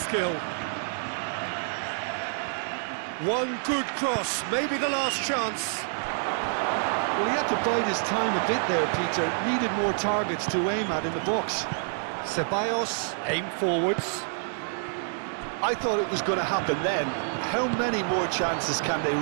One good cross, maybe the last chance. Well, he had to bide his time a bit there, Peter. Needed more targets to aim at in the box. Ceballos, aim forwards. I thought it was going to happen then. How many more chances can they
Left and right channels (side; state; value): left; silent; digital silence